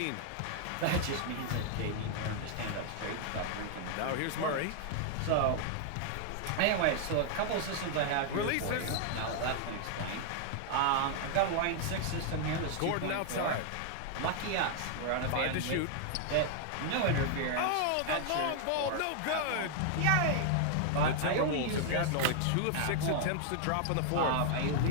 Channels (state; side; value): different; both; correlation 0.00